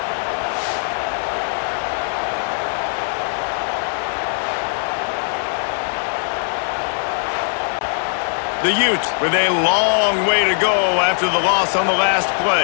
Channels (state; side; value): silent; right; 66 dB below the other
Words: The Utes with a long way to go after the loss on the last